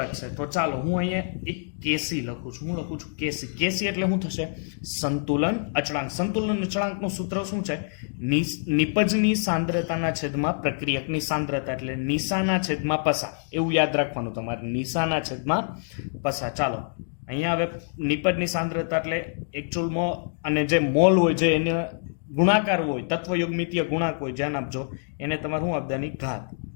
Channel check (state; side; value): silent; right; digital silence